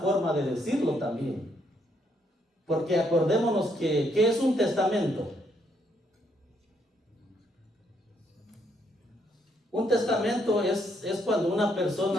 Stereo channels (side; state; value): both; normal; correlation 0.73